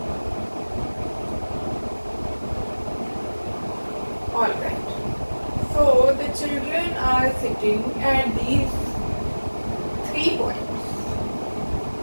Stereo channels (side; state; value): both; inverted; correlation -1.00